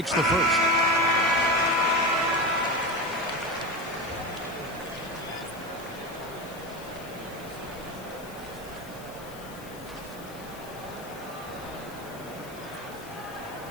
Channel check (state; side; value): noise; left; hiss, 19 dB below the sound